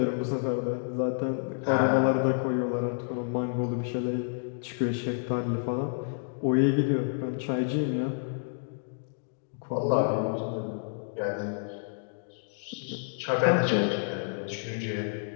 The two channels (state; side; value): silent; right; digital silence